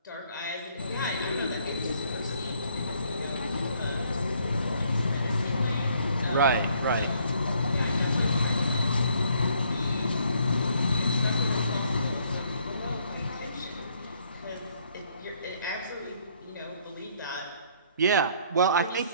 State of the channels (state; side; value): inverted; both; correlation -0.66